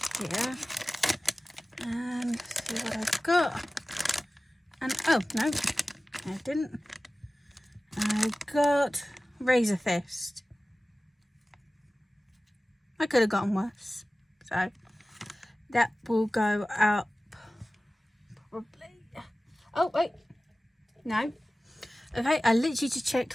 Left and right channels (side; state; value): both; normal; correlation 0.96